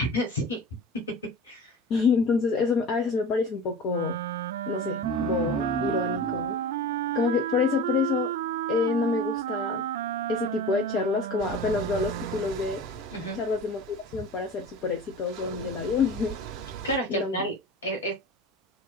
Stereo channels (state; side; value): normal; both; correlation 0.35